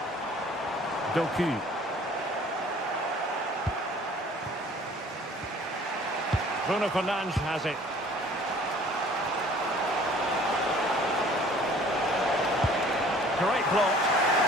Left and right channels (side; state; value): both; normal; correlation 0.52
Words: Doku. Bruno Fernandes has it. Great block.